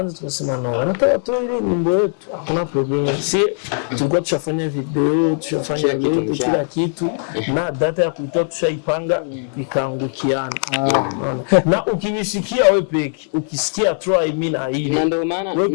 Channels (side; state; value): right; silent; 65 dB below the other